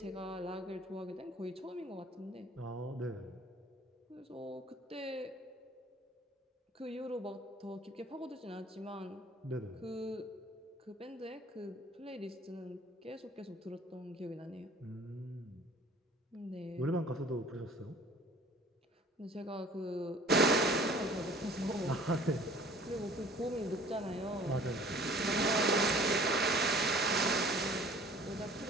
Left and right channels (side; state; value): both; normal; correlation 0.50